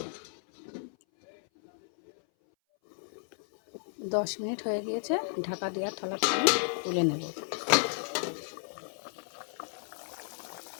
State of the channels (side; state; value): right; silent; 56 dB below the other